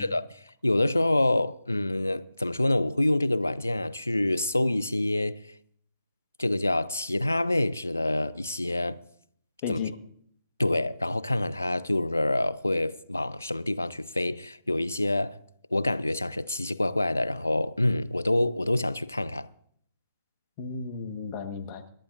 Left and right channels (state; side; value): inverted; both; correlation -0.96